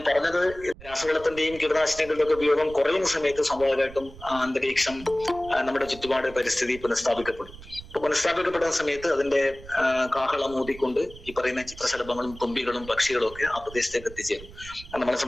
പറഞ്ഞത്, രാസവളത്തിന്റെയും കീടനാശിനികളുടെ ഒക്കെ ഉപയോഗം കുറയുന്ന സമയത്ത് സ്വാഭാവികമായിട്ടും അന്തരീക്ഷം, നമ്മുടെ ചുറ്റുപാട്, പരിസ്ഥിതി പുനഃസ്ഥാപിക്കപ്പെടും. അപ്പൊ പുനഃസ്ഥാപിക്കപ്പെടുന്ന സമയത്ത് അതിന്റെ കാഹളം ഊതിക്കൊണ്ട് ഈ പറയുന്ന ചിത്രശലഭങ്ങളും തുമ്പികളും പക്ഷികളും ഒക്കെ ആ പ്രദേശത്തേക്ക് എത്തിച്ചേരും. നമ്മളെ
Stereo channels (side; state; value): right; noise; rumble, 17 dB below the sound